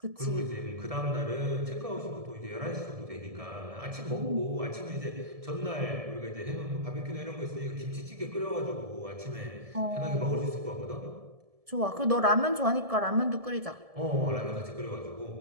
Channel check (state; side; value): late; left; 1.7 ms